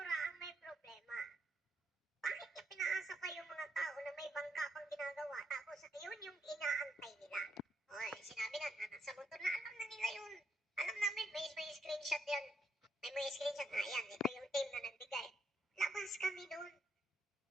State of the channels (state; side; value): normal; both; correlation 0.78